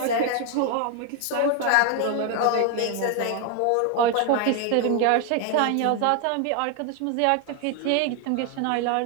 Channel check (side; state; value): both; different; correlation 0.01